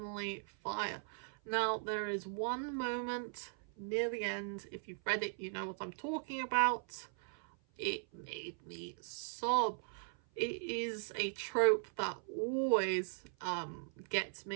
Fire. Now, there is one moment near the end, if you've read it, you know what I'm talking about. It made me sob. It is a trope that always gets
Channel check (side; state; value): left; silent; 52 dB below the other